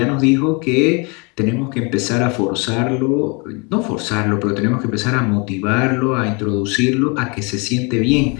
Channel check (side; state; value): right; quieter; 31.0 dB